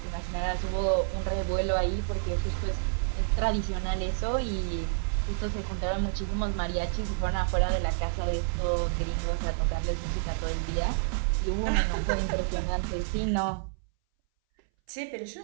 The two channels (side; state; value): left; silent; 59 dB below the other